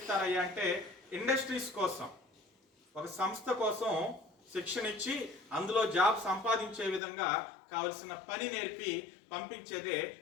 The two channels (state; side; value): drops out; right; at 7.0 s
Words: అంటే ఇండస్ట్రీస్ కోసం, ఒక సంస్థ కోసం శిక్షణ ఇచ్చి అందులో జాబ్ సంపాదించే విధంగా కావలసిన పని నేర్పి పంపించేదే